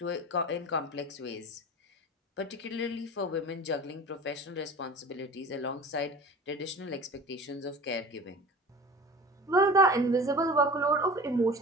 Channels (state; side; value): normal; both; correlation 0.38